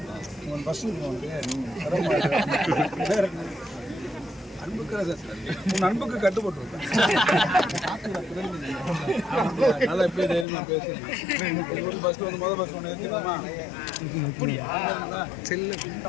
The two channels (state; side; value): drops out; right; at 10.5 s